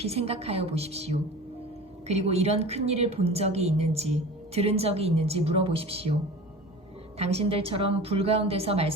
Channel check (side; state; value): both; normal; correlation 0.37